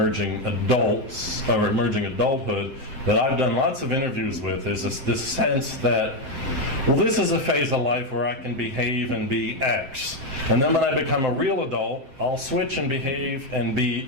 adults, or emerging adulthood, that I've done lots of interviews with, is this sense that, well, this is a phase of life where I can behave and be X. And then when I become a real adult, I'll switch and behave and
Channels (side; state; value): left; late; 7.8 ms